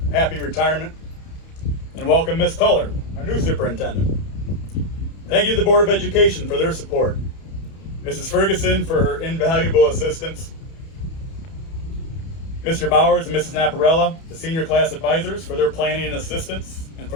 happy retirement. And welcome Ms. Tuller, our new superintendent. Thank you to the Board of Education for their support. Mrs. Ferguson for her invaluable assistance. Mr. Bowers and Mrs. Naparella, the senior class advisors, for their planning and assistance and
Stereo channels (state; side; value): late; right; 31 ms